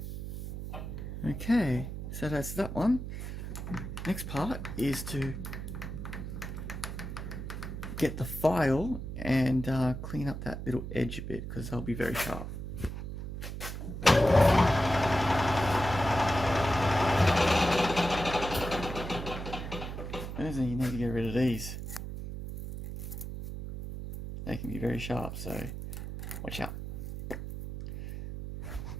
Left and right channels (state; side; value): noise; right; hum, 7 dB below the sound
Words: Okay, so that's that one. Next part is to get the file and clean up that little edge a bit, because they'll be very sharp. First thing, you need to get rid of these. They can be very sharp, so watch out.